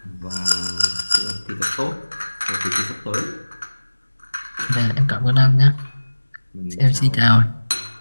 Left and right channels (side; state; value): both; inverted; correlation -1.00